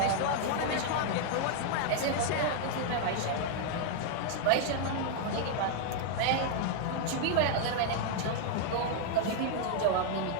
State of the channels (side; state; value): both; different; correlation 0.00